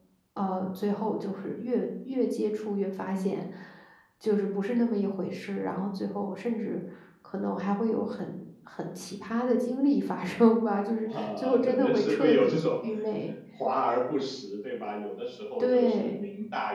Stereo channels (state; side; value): identical; both; correlation 1.00